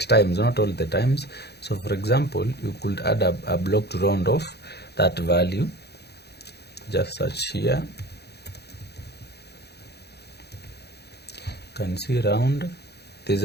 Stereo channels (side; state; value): right; late; 0.48 ms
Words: times, not all the times. So for example, you could add a block to round off that value. Just search here. You can see round. There's